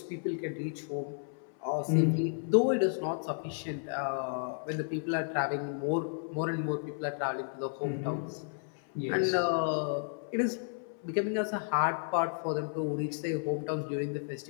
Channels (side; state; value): right; silent; 56 dB below the other